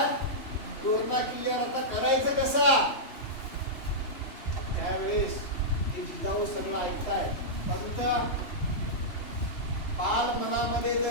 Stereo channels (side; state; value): right; late; 3.1 ms